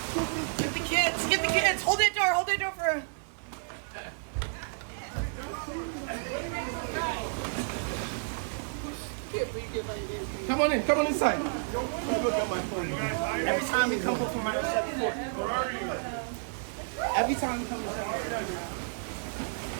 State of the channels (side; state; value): left; silent; 57 dB below the other